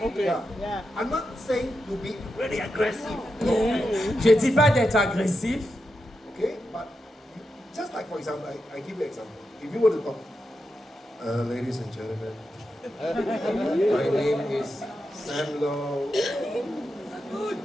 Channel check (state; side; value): normal; both; correlation 0.87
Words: Okay. Yeah. Yeah. I'm not saying to be really aggressive. Je ne dis pas d'être agressif, Okay? But just like, for example, I give you an example. If you were to talk, ladies and gentlemen, my name is Sam Low,